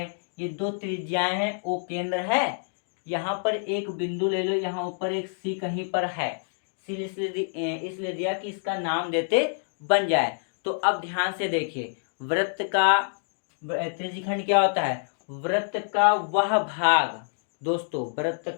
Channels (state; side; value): silent; right; digital silence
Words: ये दो त्रिज्याएं हैं, ओ केंद्र है। यहाँ पर एक बिंदु ले लो, यहाँ ऊपर एक सी कहीं पर है, सी इसलिए दिया कि इसका नाम देते बन जाए। तो अब ध्यान से देखिए, वृत्त का त्रिज्यखंड क्या होता है, वृत्त का वह भाग दोस्तों, वृत्त